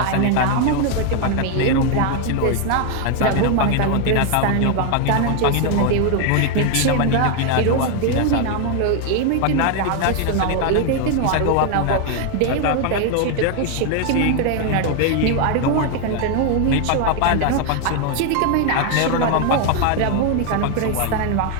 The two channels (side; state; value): both; different; correlation 0.01